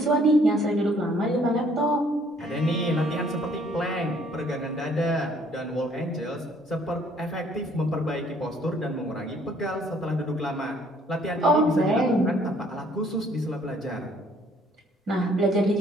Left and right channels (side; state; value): both; normal; correlation 0.61